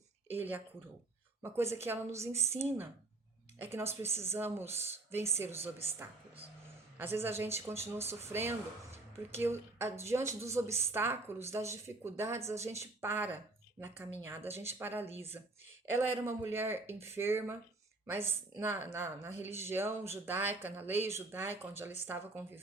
ele a curou. Uma coisa que ela nos ensina é que nós precisamos vencer os obstáculos. Às vezes a gente continua sofrendo porque diante dos obstáculos, das dificuldades, a gente para na caminhada, a gente paralisa. Ela era uma mulher enferma, mas na religião judaica, na lei judaica onde ela estava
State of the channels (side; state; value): left; quieter; 3.1 dB